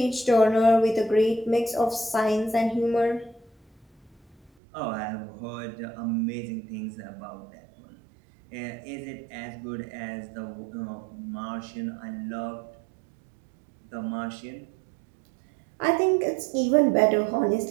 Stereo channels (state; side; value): drops out; left; at 4.5 s